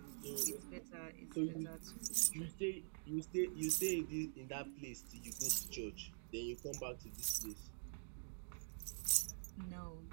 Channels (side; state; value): left; silent; digital silence